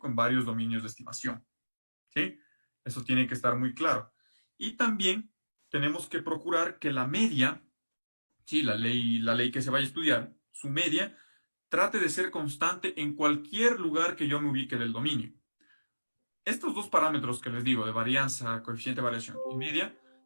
en varios dominios de estimación, ¿sí? Eso tiene que estar muy claro. Y también tenemos que procurar que la media, sí, la ley que se vaya a estudiar, su media, trate de ser constante en cualquier lugar que yo me ubique del dominio. Estos dos parámetros que les digo, de varianza, coeficiente de variación y media,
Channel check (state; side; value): inverted; both; correlation -1.00